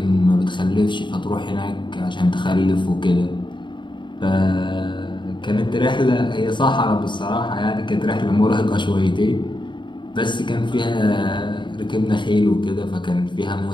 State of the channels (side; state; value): right; late; 0.23 ms